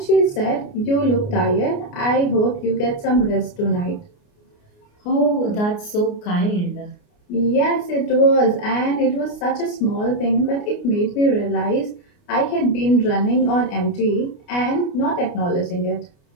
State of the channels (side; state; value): right; late; 29 ms